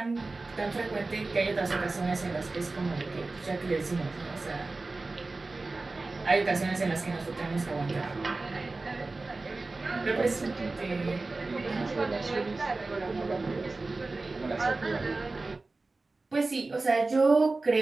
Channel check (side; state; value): left; quieter; 3.4 dB